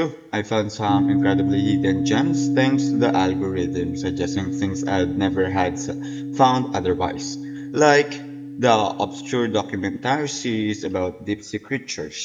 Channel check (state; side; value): identical; both; correlation 1.00